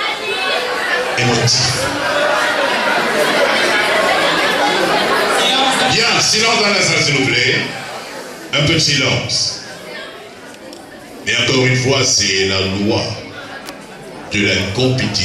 émotif. Bien, silence dans la salle, s'il vous plaît. Un peu de silence. Mais encore une fois, c'est la loi de la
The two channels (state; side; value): identical; both; correlation 1.00